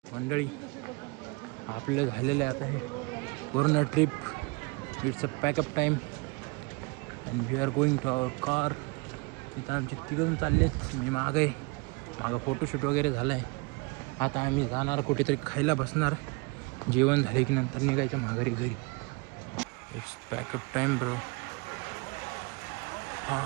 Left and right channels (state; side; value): quieter; left; 27.7 dB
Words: मंडळी आपलं झालेलं आहे आता हे पूर्ण trip. It's a pack up time and we are going to our car. इथं आमचे तिघं चाललेत, मी मागं आहे. मागं फोटोशूट वगैरे झालं आहे. आता आम्ही जाणार कुठेतरी खायला बसणार, जेवण झाले की नंतर निघायचं माघारी घरी. It's pack up time bro. हां